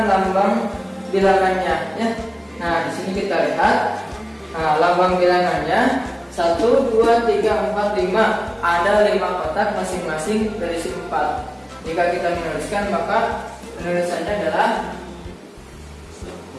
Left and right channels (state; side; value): identical; both; correlation 1.00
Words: lambang bilangannya ya. Nah, di sini kita lihat, nah, lambang bilangannya 1, 2, 3, 4, 5. Ada 5 kotak masing-masing berisi 4. Jika kita menuliskan, maka penulisannya adalah